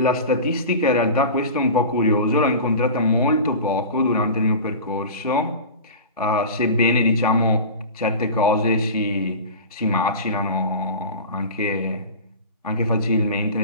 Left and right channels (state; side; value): inverted; both; correlation -0.33